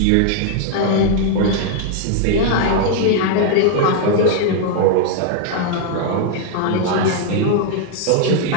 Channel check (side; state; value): both; different; correlation 0.00